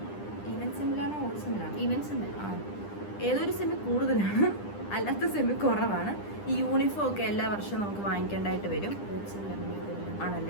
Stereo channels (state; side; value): late; right; 9.9 ms